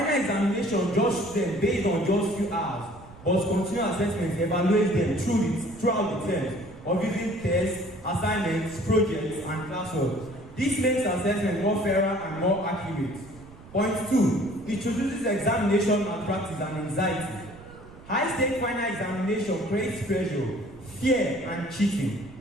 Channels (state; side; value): noise; right; rumble, 19 dB below the sound